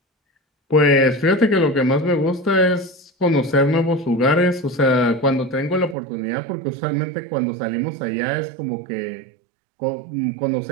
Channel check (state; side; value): drops out; left; at 6.0 s